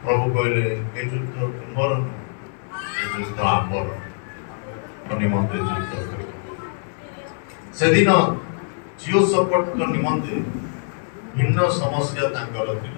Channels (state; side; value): silent; right; 58 dB below the other